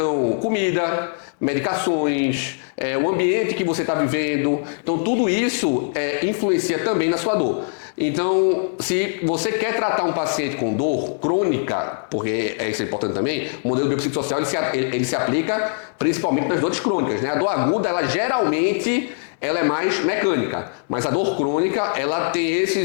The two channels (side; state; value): right; silent; digital silence